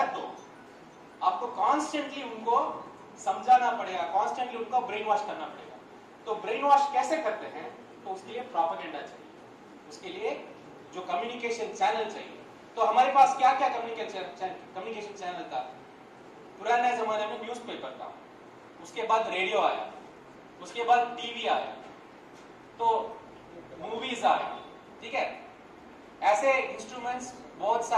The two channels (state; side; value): identical; both; correlation 1.00